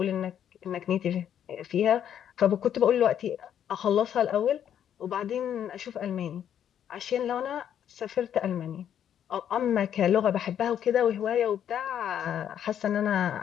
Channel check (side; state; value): right; quieter; 9.6 dB